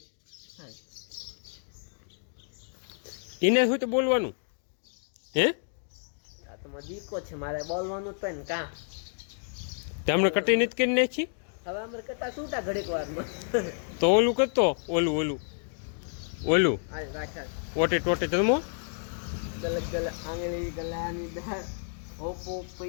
એને શું તો બોલવાનું હે આ તો મારો દીકો છે મારે બોલવાનું તો ને કા તમને કટી નથી કરી નાખી હવે અમારે કટા છૂટા ઘડીક વારમાં તો ઓલું કરતો ઓલું હાલ રાખા ઓટે ટોટે જમો ગલ ગલ આંગળી ગલાની દાળ હોપો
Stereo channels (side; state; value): right; silent; digital silence